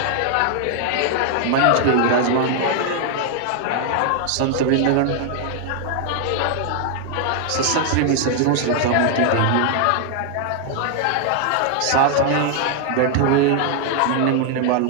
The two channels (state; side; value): different; both; correlation 0.00